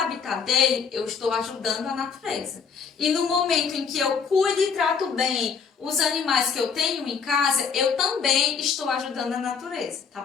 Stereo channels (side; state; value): right; quieter; 6.2 dB